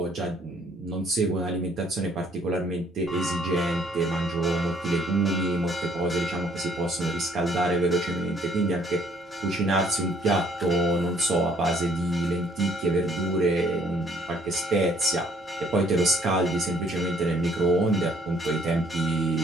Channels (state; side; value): normal; both; correlation 0.62